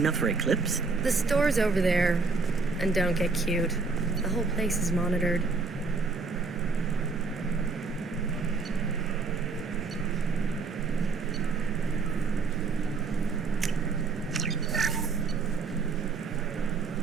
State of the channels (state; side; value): quieter; left; 4.3 dB